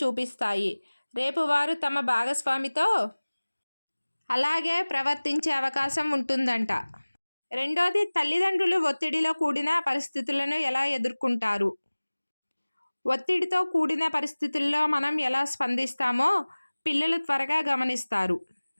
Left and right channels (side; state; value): both; inverted; correlation -1.00